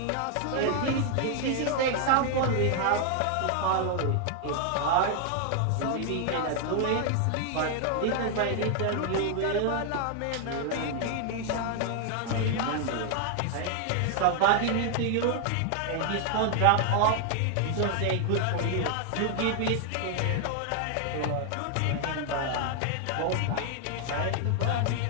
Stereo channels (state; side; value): different; both; correlation 0.00